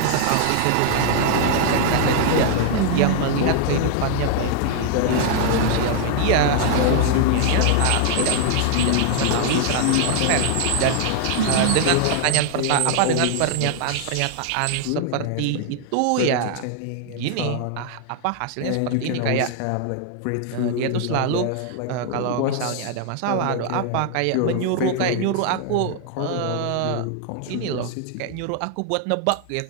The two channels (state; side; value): different; both; correlation 0.00